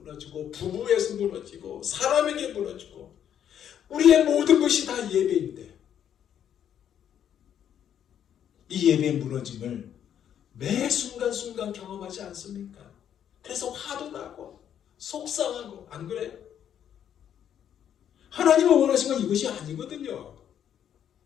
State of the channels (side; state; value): right; quieter; 9.5 dB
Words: 부부에서 무너지고 사람에게 무너지고 우리의 모든 것이 다 예배인데 이 예배의 무너짐을 매 순간순간 경험하지 않습니까? 그래서 화도 나고 속상하고 안 그래요? 하나님은 원하신 건 이것이 아니거든요.